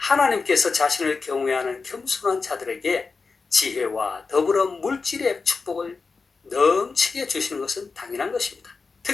자신을 경외하는 겸손한 자들에게 지혜와 더불어 물질의 축복을 넘치게 주시는 것은 당연한 것입니다.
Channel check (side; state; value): right; quieter; 4.5 dB